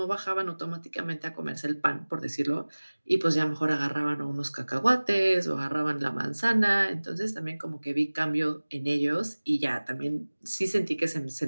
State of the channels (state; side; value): inverted; both; correlation -1.00